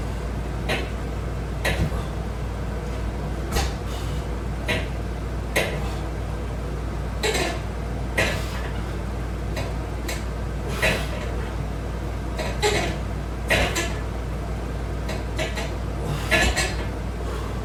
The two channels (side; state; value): both; identical; correlation 1.00